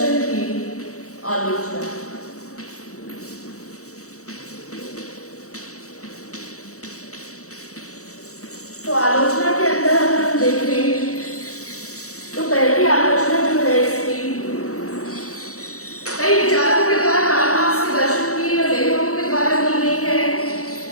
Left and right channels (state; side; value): late; right; 0.65 ms